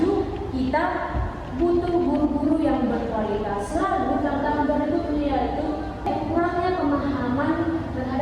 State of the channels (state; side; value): identical; both; correlation 1.00